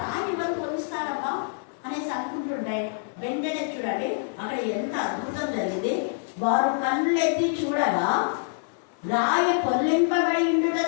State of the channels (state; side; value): silent; right; 56 dB below the other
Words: రాయి ఎవరు పొందిస్తారబ్బా అనేసి అనుకుంటుంటే, వెంటనే చూడండి అక్కడ ఎంత అద్భుతం జరిగింది. వారు కన్నులెత్తి చూడగా రాయి పొల్లింపబడి ఉండుట